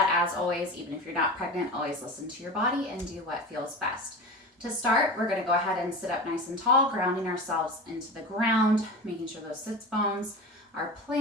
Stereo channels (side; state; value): both; normal; correlation 0.30